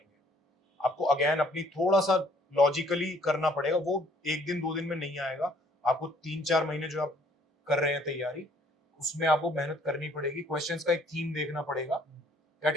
आपको अगेन अपनी थोड़ा सा लॉजिकली करना पड़ेगा, वो 1 दिन 2 दिन में नहीं आएगा। आपको 3-4 महीने जो आप कर रहे हैं तैयारी, उसमें आपको मेहनत करनी पड़ेगी, क्वेश्चंस का एक थीम देखना पड़ेगा,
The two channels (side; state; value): both; normal; correlation 0.60